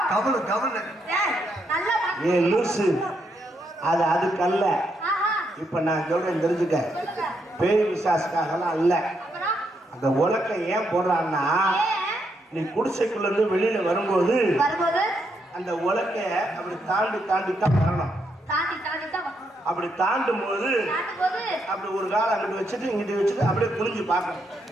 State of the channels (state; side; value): normal; both; correlation 0.78